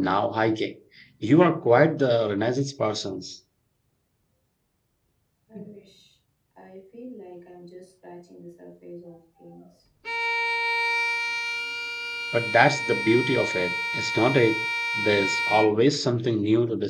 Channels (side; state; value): both; identical; correlation 1.00